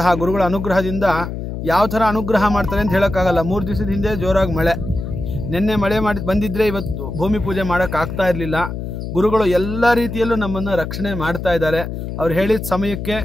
ಗುರುಗಳ ಅನುಗ್ರಹದಿಂದ ಯಾವ ಥರ ಅನುಗ್ರಹ ಮಾಡ್ತಾರೆ ಅಂತ ಹೇಳೋಕ್ಕಾಗಲ್ಲ. 3 ದಿವಸದ ಹಿಂದೆ ಜೋರಾಗಿ ಮಳೆ, ನಿನ್ನೆ ಮಳೆ ಬಂದಿದ್ದರೆ ಇವತ್ತು ಭೂಮಿ ಪೂಜೆ ಮಾಡೋಕ್ಕಾಗ್ತಾ ಇರಲಿಲ್ಲ. ಗುರುಗಳು ಎಲ್ಲ ರೀತಿಯಲ್ಲೂ ನಮ್ಮನ್ನು ರಕ್ಷಣೆ ಮಾಡ್ತಾ ಇದ್ದಾರೆ. ಅವ್ರು ಹೇಳಿದ ಸಮಯಕ್ಕೆ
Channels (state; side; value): noise; left; hum, 6 dB below the sound